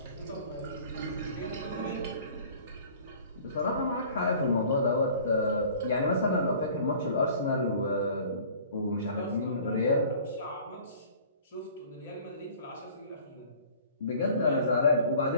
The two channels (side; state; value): both; inverted; correlation -0.49